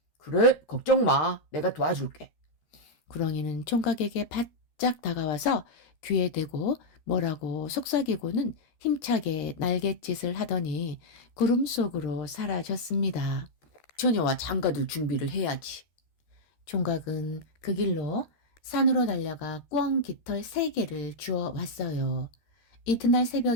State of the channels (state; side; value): late; right; 13 ms